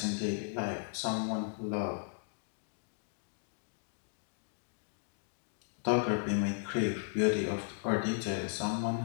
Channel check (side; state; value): right; silent; 54 dB below the other